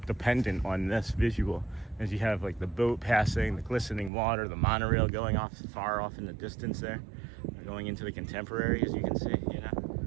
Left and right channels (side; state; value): left; drops out; at 4.1 s